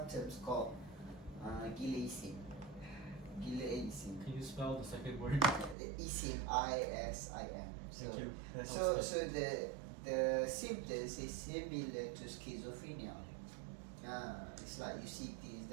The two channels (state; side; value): drops out; left; at 5.8 s